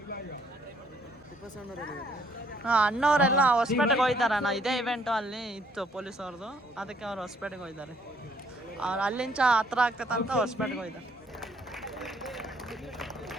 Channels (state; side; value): normal; both; correlation 0.66